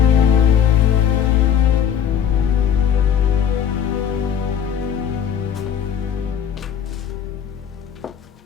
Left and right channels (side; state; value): right; quieter; 8.6 dB